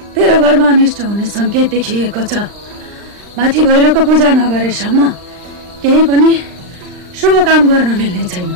तेरो घरमा अनिष्ट हुने संकेत देखिएको छ माथि भैरवको पूजा नगरेसम्म केही पनि शुभ काम गर्न मिल्ने छैन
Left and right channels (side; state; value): left; late; 39 ms